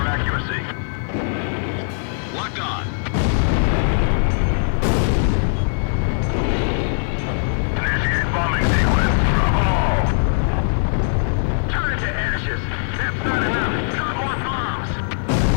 accuracy. Locked on. Initiate bombing sequence. Drop all! Turn it to ashes. That's not enough. Drop more bombs.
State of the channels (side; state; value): right; silent; digital silence